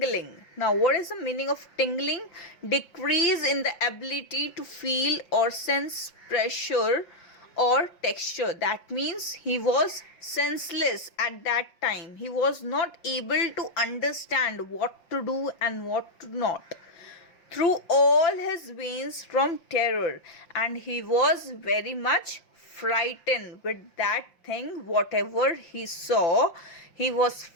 Now, what is the meaning of tingling? Decrease in the ability to feel or sense pressure or texture. That means he was senseless at that time. He was not able to understand what to do and what to not, through all his veins from terror, and he was very much frightened with that thing. Whatever he saw, he was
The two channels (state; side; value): late; right; 5.8 ms